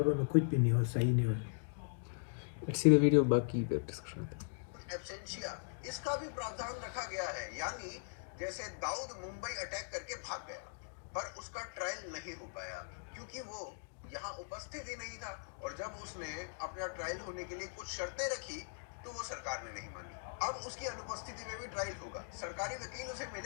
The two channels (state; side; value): silent; right; digital silence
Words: में कुछ भी नहीं हो, सही नहीं हो। सीधे वीडियो बाकी पे डिस्कशन आते हैं। एब्सेंशिया इसका भी प्रावधान रखा गया है, यानी जैसे दाऊद मुंबई अटैक करके भाग गया पर उसका ट्रायल नहीं हो पाया क्योंकि वो यहाँ उपस्थित ही नहीं था, और जब उसने अपना ट्रायल होने के लिए कुछ शर्तें रखी तो वो सरकार ने नहीं मानी। अब उसकी अनुपस्थिति में भी ट्रायल होगा, सरकारी वकील उसे